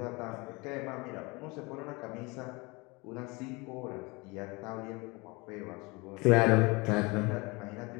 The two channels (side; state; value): right; quieter; 26.2 dB